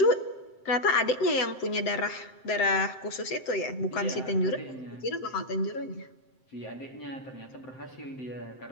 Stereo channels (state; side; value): late; right; 7.7 ms